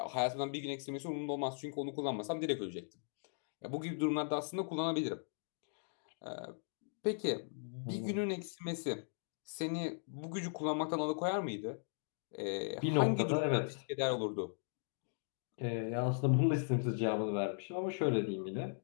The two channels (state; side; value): silent; right; digital silence